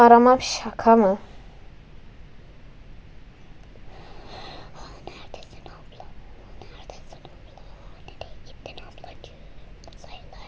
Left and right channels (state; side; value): identical; both; correlation 1.00